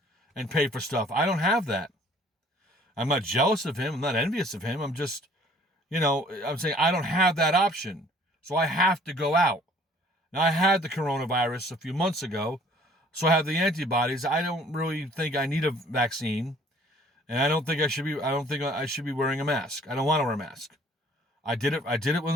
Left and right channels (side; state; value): both; normal; correlation 0.56